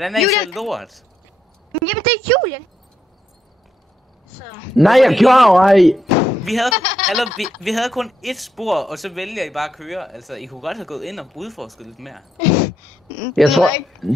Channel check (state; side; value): normal; both; correlation 0.79